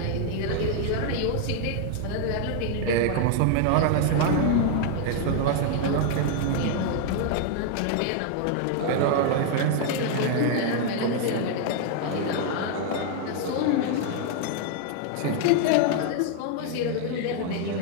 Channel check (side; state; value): both; different; correlation 0.00